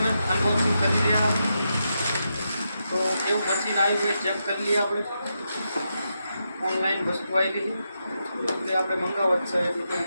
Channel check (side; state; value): both; inverted; correlation -0.85